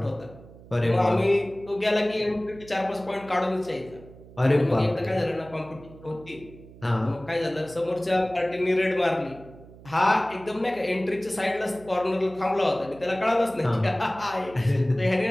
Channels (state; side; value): noise; right; hum, 20 dB below the sound